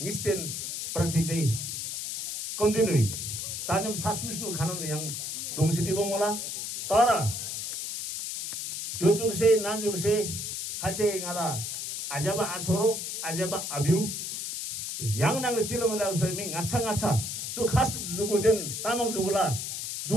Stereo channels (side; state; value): left; noise; hiss, 5 dB below the sound